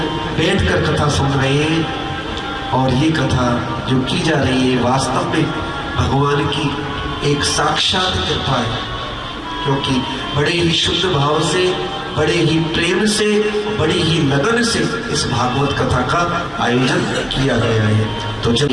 बैठकर कथा सुन रहे हैं, और ये कथा जो की जा रही है वास्तव में भगवान की एक साक्षात कृपा है, क्योंकि बड़े ही शुद्ध भाव से, बड़े ही प्रेम से, बड़ी ही लगन से इस भागवत कथा का आयोजन किया गया है। तो जब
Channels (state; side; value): identical; both; correlation 1.00